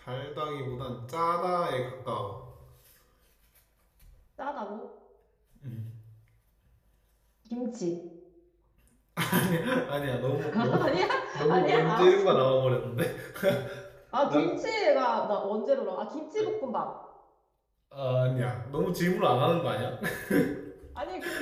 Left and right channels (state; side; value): identical; both; correlation 1.00